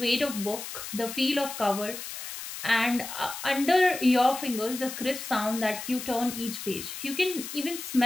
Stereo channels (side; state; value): left; noise; hiss, 9 dB below the sound